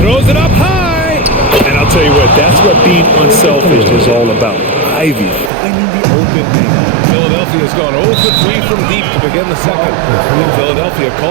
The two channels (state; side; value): drops out; left; at 5.5 s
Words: Throws it up high. And I'll tell you what, that's what being unselfish is all about. Ivy finding the open man. Philadelphia's gone 0 for 3 from deep to begin the second. And Philadelphia